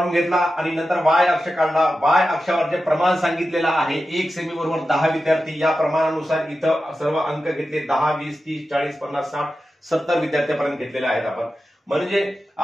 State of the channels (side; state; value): both; normal; correlation 0.92